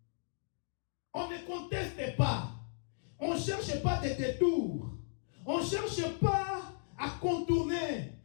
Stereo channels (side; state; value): right; silent; digital silence